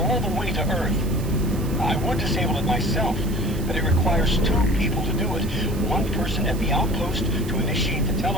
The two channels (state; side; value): noise; right; hiss, 16 dB below the sound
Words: the way to Earth. I would disable it myself, but it requires 2 people to do it. One person at the outpost to initiate the